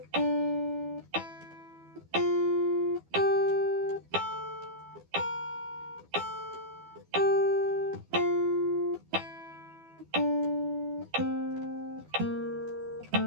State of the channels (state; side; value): late; left; 12 ms